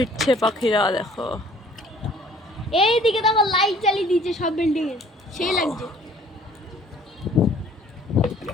পাখিরা, দেখো। এইদিকে দেখো লাইট জ্বালিয়ে দিয়েছে সব বিল্ডিং এ, সেই লাগছে।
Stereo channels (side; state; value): both; normal; correlation 0.55